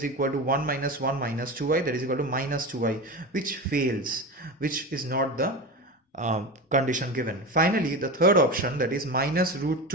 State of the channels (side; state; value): both; normal; correlation 0.25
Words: equal to 1 minus 1 minus 2i, that is equal to minus 2i, which fails, which is not the condition given. Finally, the third option, that is minus root